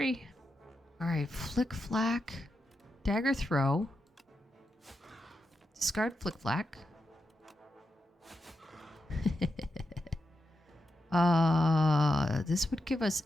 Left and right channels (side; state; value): both; normal; correlation 0.87